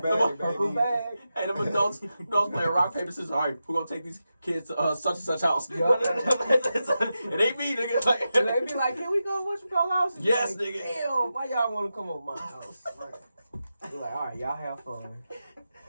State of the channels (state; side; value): inverted; both; correlation -0.90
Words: bag, Purple baby. bag. Hey, them adults playing rock, paper, scissors. All right, we're gonna take these kids to such and such house. Yeah. It ain't me, nigga. Like, And they be like, can we go what you call house? Yes, Like, nigga. Damn, why y'all want to come over my house? Right. We're like, all right, y'all have fun.